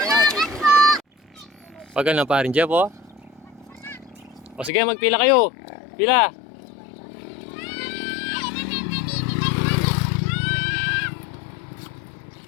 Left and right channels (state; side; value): drops out; right; at 4.7 s